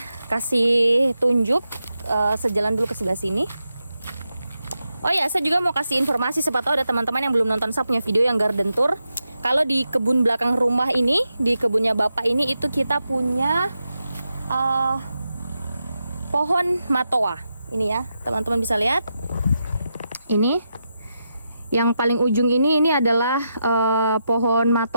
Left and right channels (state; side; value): inverted; both; correlation -0.87